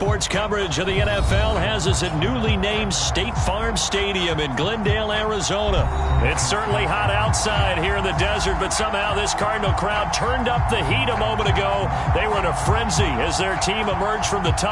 coverage of the NFL has us at newly named State Farm Stadium in Glendale, Arizona. It's certainly hot outside here in the desert, but somehow this Cardinal crowd turned up the heat a moment ago. They were in a frenzy as their team emerged from the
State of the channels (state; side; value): identical; both; correlation 1.00